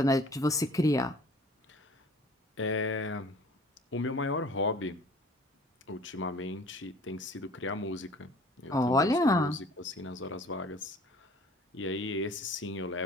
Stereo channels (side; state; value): both; normal; correlation 0.49